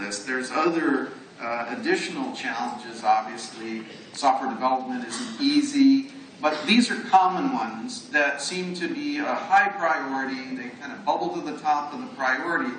There's other additional challenges, obviously. Software development isn't easy. But these are common ones that seem to be a high priority. They kind of bubble to the top of the priority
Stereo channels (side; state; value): both; identical; correlation 1.00